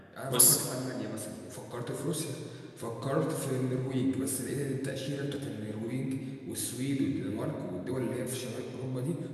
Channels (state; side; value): identical; both; correlation 1.00